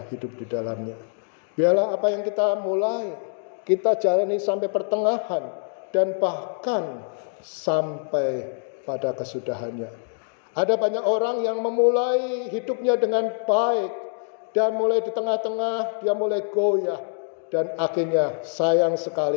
hidup di dalamnya. Biarlah apa yang kita mulai, kita jalani sampai pertengahan dan bahkan sampai pada kesudahannya. Ada banyak orang yang memulai hidupnya dengan baik, dan mulai di tengah-tengah dia mulai goyah, dan akhirnya sayang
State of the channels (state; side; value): silent; right; digital silence